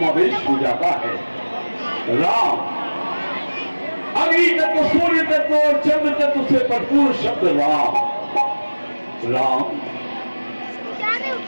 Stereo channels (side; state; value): both; inverted; correlation -1.00